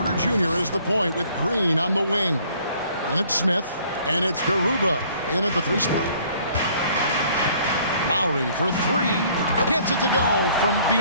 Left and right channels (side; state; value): both; inverted; correlation -0.58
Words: Jr. is the point with Green on the wing. And it's Smith, and it's Garuba in at the 3 spot. Lowry for 3, gets it to go from